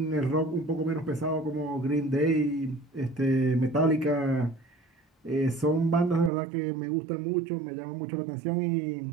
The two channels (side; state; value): left; drops out; at 6.3 s